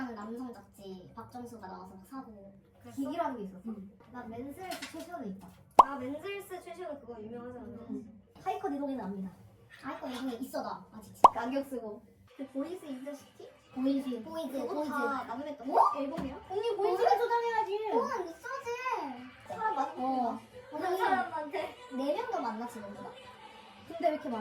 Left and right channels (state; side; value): identical; both; correlation 1.00